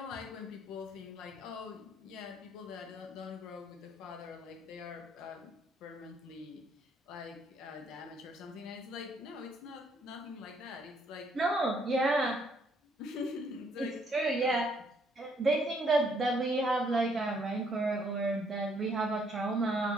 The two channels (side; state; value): both; normal; correlation 0.68